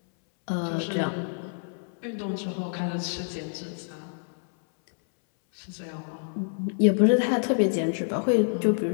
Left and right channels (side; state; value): right; silent; 60 dB below the other